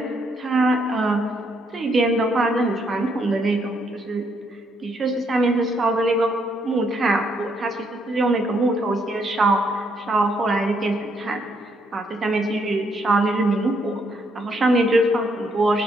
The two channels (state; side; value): normal; both; correlation 0.73